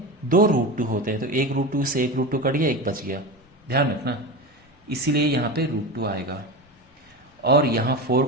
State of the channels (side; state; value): both; normal; correlation 0.23